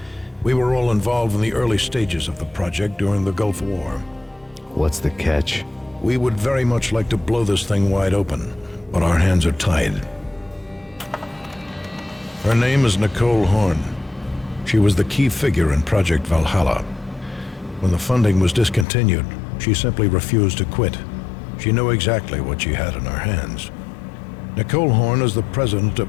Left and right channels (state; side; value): drops out; right; at 18.9 s